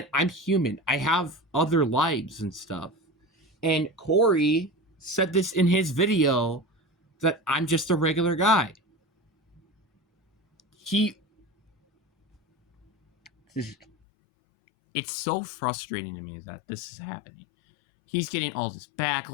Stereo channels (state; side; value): drops out; right; at 13.9 s